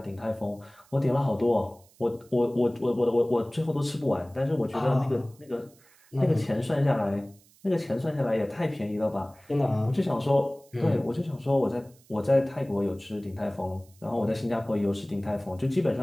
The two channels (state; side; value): noise; right; hiss, 29 dB below the sound